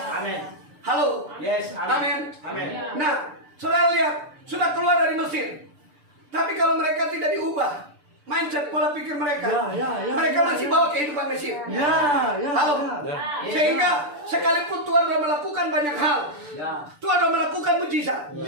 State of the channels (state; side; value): late; left; 6.8 ms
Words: Amin. Halo. Yes. Amin. Amin. Nah, saudara lihat, sudah keluar dari Mesir. Tapi kalau mereka tidak diubah, mindset pola pikir mereka, Ya, ya, ya, mereka ya, masih ya. bawa kehidupan Mesir. Ya, ya. Halo. Ya. Sehingga Sekalipun Tuhan telah melakukan banyak hal, Ya. Tuhan telah melakukan mujizat,